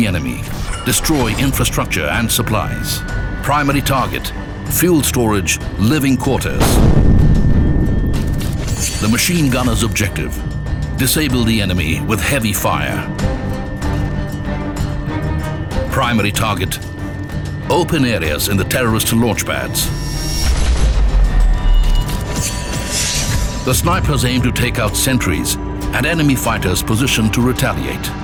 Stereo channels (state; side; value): identical; both; correlation 1.00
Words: enemy, destroy infrastructure and supplies. Primary target: fuel storage, living quarters. The machine gunner's objective: disable the enemy with heavy fire. Primary target: open areas in the terrorist launch pads. The snipers aim to take out sentries and enemy fighters positioned to retaliate.